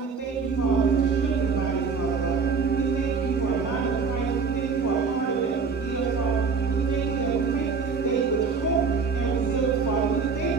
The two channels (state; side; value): quieter; left; 5.1 dB